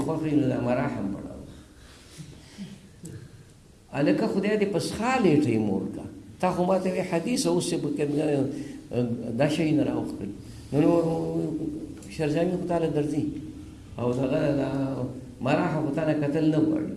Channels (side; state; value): both; identical; correlation 1.00